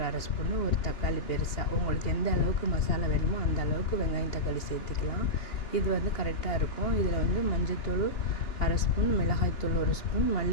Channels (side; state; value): right; late; 2.9 ms